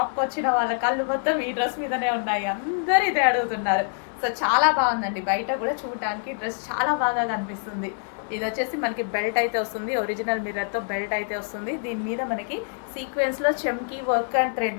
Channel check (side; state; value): right; silent; 61 dB below the other